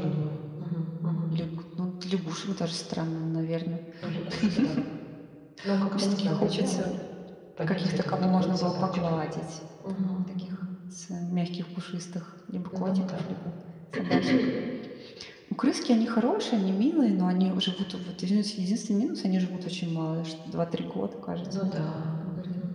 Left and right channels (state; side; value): identical; both; correlation 1.00